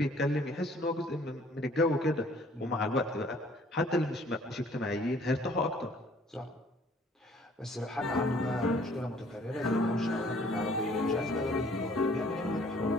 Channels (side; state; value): both; normal; correlation 0.57